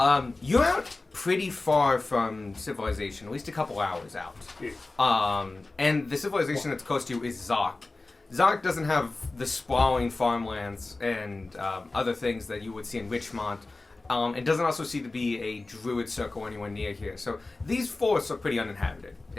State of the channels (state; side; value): quieter; right; 3.3 dB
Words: You're out pretty far from civilization, at least a couple hours out. Yeah. And the civilization that's close to you is Zark. Zark doesn't have the sprawling farmlands and other things that you would see in Richmont. It doesn't also seem to be a druid circle anywhere near here. So these forests are pretty uninhabited,